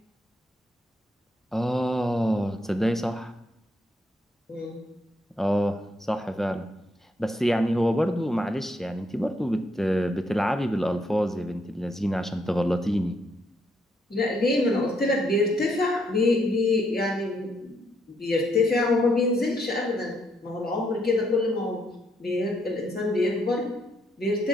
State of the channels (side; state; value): both; normal; correlation 0.74